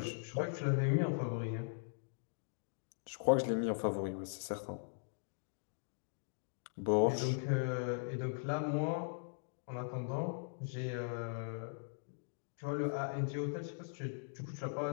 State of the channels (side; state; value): right; silent; digital silence